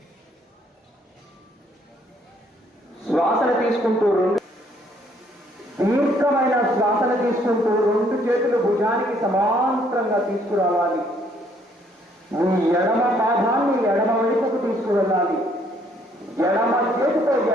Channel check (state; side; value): normal; both; correlation 0.66